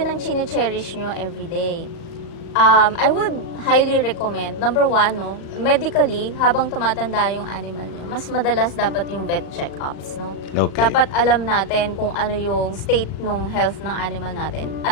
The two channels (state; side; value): late; right; 37 ms